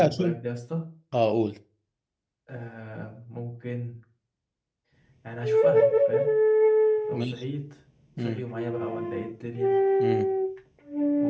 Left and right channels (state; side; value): identical; both; correlation 1.00